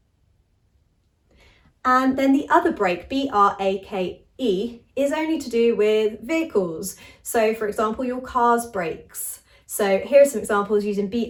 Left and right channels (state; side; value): identical; both; correlation 1.00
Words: And then the other break, B-R-A-K-E, is only to do with vehicles. So for example, your car's brakes. So here are some examples using